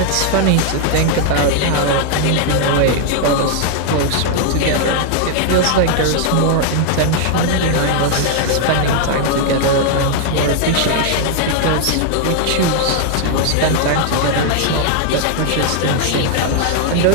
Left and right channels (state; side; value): different; both; correlation 0.00